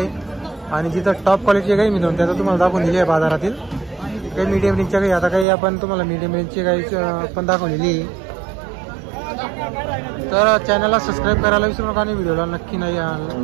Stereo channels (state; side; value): drops out; left; at 5.5 s